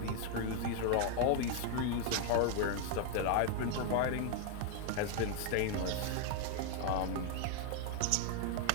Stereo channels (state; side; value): different; both; correlation 0.00